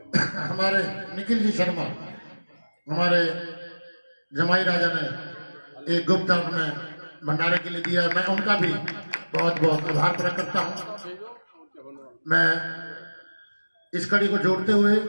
हमारे निखिल जी शर्मा, हमारे जमाई राजा ने एक गुप्त दान में भंडारे के लिए दिया है। मैं उनका भी बहुत बहुत आभार प्रकट करता हूँ। मैं इस कड़ी को जोड़ते हुए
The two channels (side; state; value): both; inverted; correlation -1.00